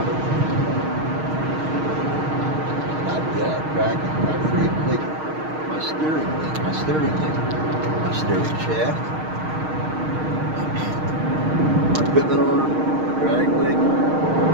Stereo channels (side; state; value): left; late; 6.4 ms